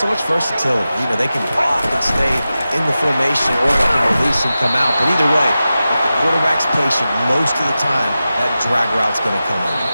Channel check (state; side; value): inverted; both; correlation -0.93